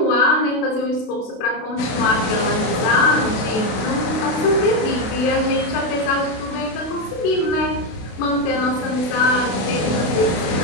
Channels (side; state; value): right; late; 32 ms